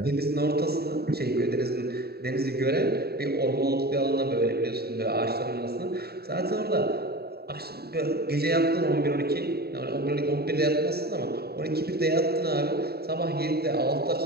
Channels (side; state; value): left; late; 0.46 ms